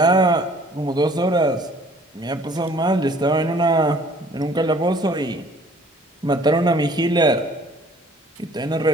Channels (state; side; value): normal; both; correlation 0.55